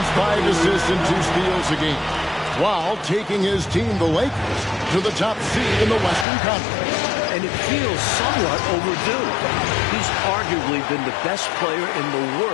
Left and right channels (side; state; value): right; drops out; at 6.2 s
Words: 5 assists, and 2 steals a game, while taking his team, the Lakers, to the top seed in the Western Conference. And it feels somewhat overdue. He's arguably been the best player in the